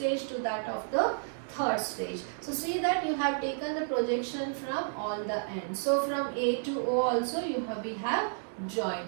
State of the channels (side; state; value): left; silent; digital silence